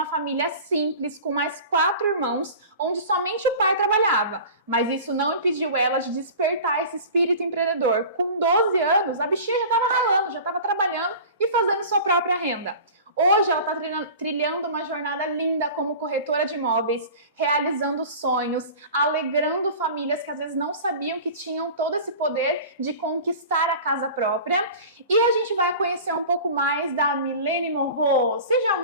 família simples, com mais 4 irmãos, onde somente o pai trabalhava. Mas isso não impediu ela de despertar esse espírito empreendedor. Com 12 anos, a bichinha já estava ralando, já estava trabalhando e fazendo sua própria renda. Hoje ela está trilhando uma jornada linda como corretora de imóveis, realizando sonhos, alegrando famílias que às vezes não sabiam que tinham todo esse poder de conquistar a casa própria. E a gente vai conhecer um pouco mais da Milene Morro. Seja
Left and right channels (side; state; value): both; inverted; correlation -0.38